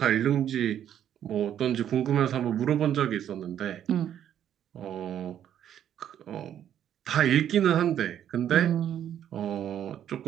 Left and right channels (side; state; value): left; quieter; 10.2 dB